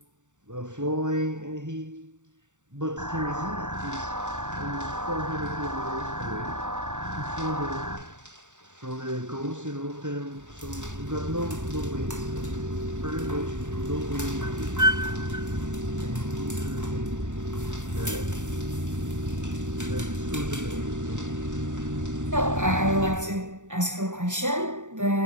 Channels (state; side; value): late; left; 0.85 ms